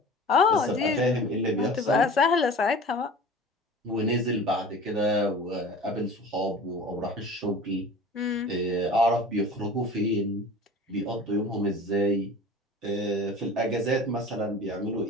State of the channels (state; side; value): normal; both; correlation 0.40